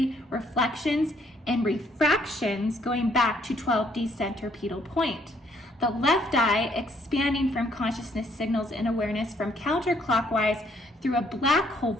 reflections and refractions going back to 12D centripetal point. The left eye expanding from consciousness signals and awareness from counterclockwise through a black hole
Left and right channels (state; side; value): normal; both; correlation 0.67